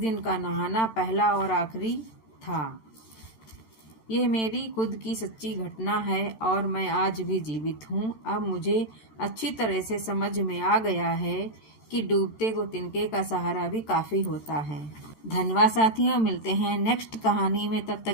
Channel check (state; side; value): late; right; 13 ms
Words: का नहाना पहला और आखिरी था। यह मेरी खुद की सच्ची घटना है और मैं आज भी जीवित हूँ। अब मुझे अच्छी तरह से समझ में आ गया है कि डूबते को तिनके का सहारा भी काफ़ी होता है। धन्यवाद साथियों, मिलते हैं नेक्स्ट कहानी में। तब